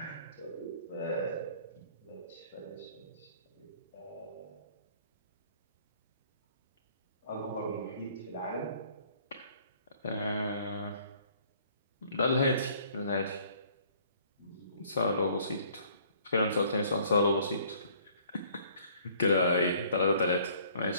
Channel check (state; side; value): inverted; both; correlation -0.58